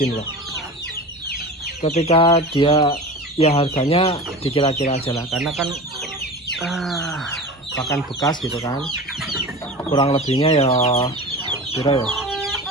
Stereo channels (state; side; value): normal; both; correlation 0.32